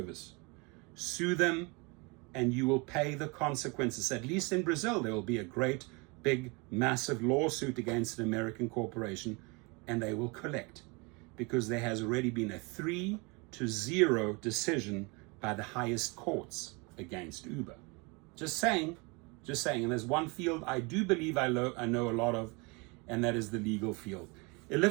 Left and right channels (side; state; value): left; quieter; 29.0 dB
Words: Sue them and you will pay the consequences. At least in Brazil, there will be a great, big, massive lawsuit against an American corporation and they will collect, because there has already been a 3-0 decision by the highest courts against Uber. Just saying. And there's one field I do believe I know a lot of, and that is the legal field. A